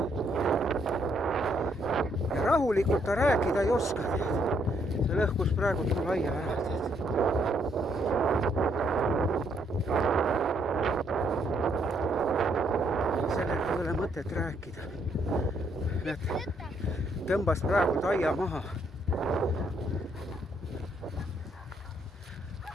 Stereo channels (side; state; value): both; normal; correlation 0.72